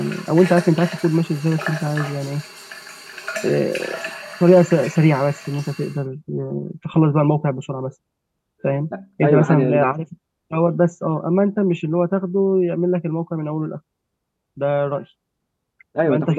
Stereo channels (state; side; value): identical; both; correlation 1.00